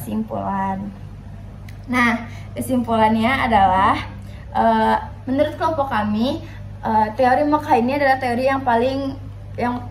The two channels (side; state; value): both; identical; correlation 1.00